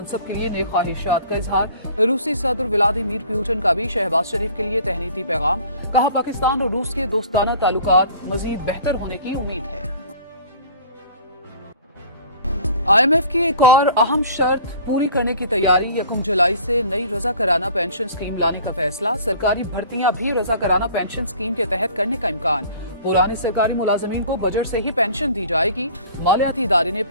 के लिए नेक ख्वाहिशात का इजहार। रूसी सदर व्लादिमीर पुतिन का भी शहबाज शरीफ के लिए तहनीती पैगाम। कहा, पाकिस्तान और रूस के दोस्ताना ताल्लुकात मजीद बेहतर होने की उम्मीद है। IMF की एक और अहम शर्त पूरी करने की तैयारी। 1 जुलाई से नई रजा कराना पेंशन स्कीम लाने का फैसला। सरकारी भर्तियां भी रजा कराना पेंशन स्कीम के तहत करने का इम्कान। पुराने सरकारी मुलाजमीन को बजट से ही पेंशन दी जाएगी। मालियाती इदारे ने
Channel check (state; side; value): inverted; both; correlation -0.48